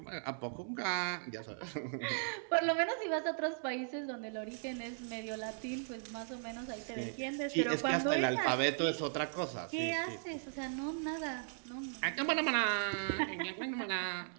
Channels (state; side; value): silent; left; digital silence